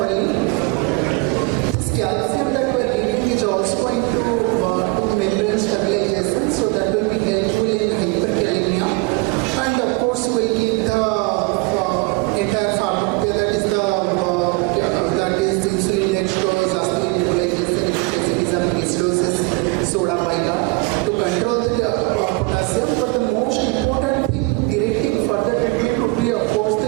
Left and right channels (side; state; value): left; quieter; 25.4 dB